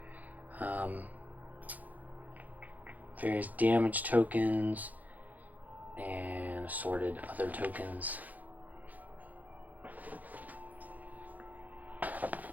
Various damage tokens and assorted other tokens.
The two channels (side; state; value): left; late; 0.080 ms